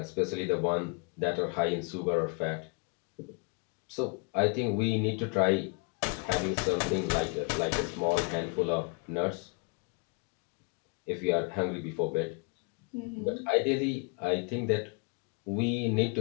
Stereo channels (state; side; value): quieter; right; 34.7 dB